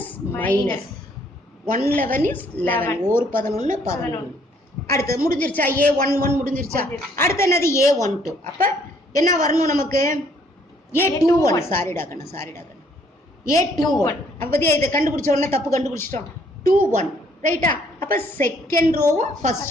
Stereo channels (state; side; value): normal; both; correlation 0.65